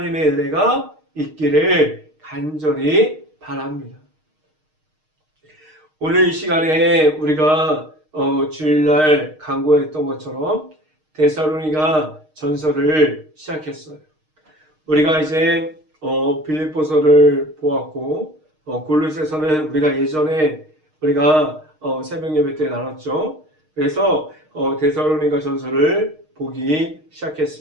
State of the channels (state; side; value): late; left; 6.5 ms